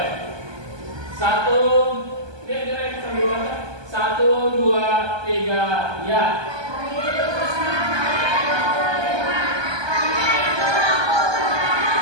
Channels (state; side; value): late; left; 1.2 ms